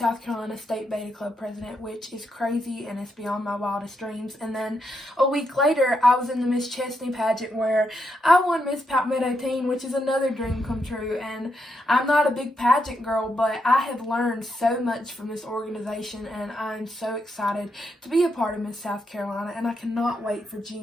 Carolina State Beta Club president, which is crazy, and it's beyond my wildest dreams. And then a week later, I was in the Miss Chesney pageant where I won Miss Palmetto Teen, which is another dream come true. And I'm not a big pageant girl, but I have learned so much from this organization, and I'm so excited to be a part of Miss South Carolina, and I cannot wait for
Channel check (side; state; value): both; normal; correlation 0.81